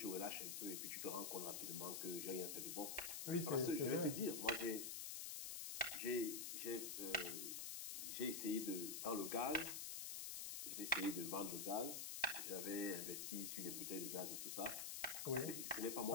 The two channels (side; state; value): left; noise; hiss, 3 dB below the sound